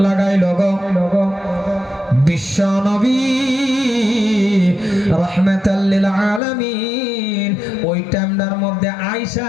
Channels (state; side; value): drops out; right; at 6.4 s